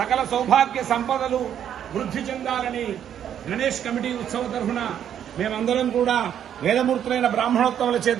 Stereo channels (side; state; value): left; quieter; 9.6 dB